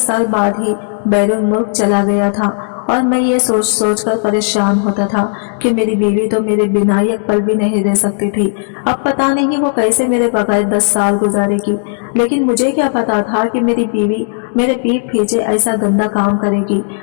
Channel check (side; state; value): right; silent; 71 dB below the other